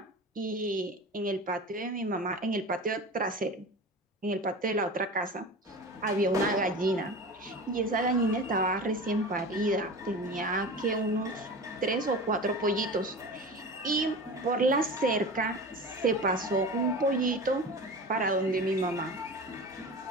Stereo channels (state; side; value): normal; both; correlation 0.32